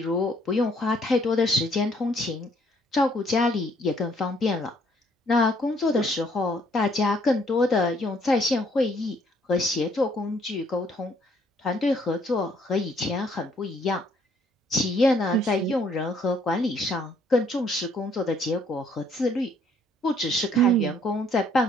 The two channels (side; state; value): both; normal; correlation 0.65